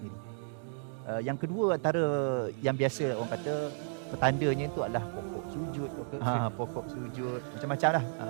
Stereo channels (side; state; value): left; silent; digital silence